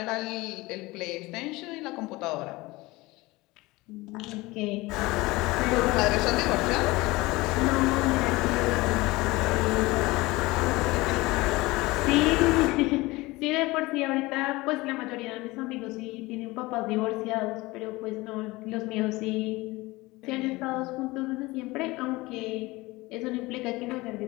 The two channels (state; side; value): quieter; right; 21.4 dB